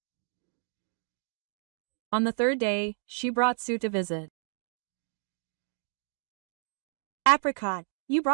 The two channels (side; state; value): left; silent; digital silence